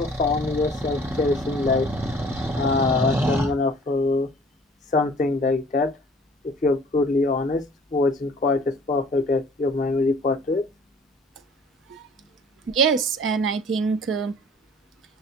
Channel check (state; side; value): normal; both; correlation 0.51